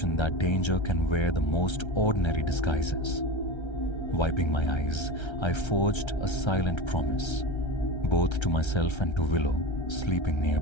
that danger can wear the most ordinary disguises. Wiping my eyes, I forged a silent promise, both to myself and to Willow, sleeping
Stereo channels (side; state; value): right; late; 1.3 ms